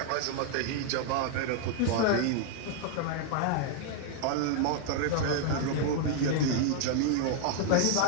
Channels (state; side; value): different; both; correlation 0.00